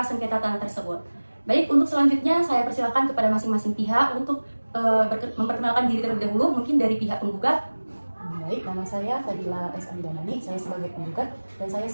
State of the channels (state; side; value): inverted; both; correlation -1.00